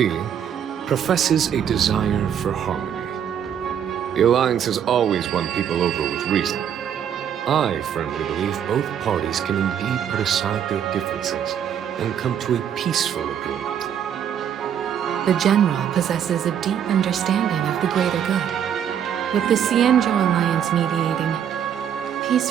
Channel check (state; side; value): quieter; left; 8.9 dB